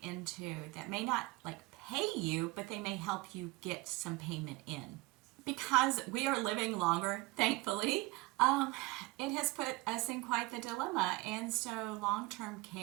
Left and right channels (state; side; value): quieter; left; 22.9 dB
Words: into that may not like pay you, but they may help you get some payment in. Because we are living longer, thankfully, it has put us in quite the dilemma. And so long-term